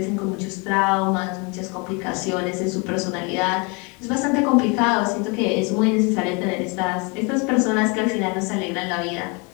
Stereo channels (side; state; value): right; quieter; 31.0 dB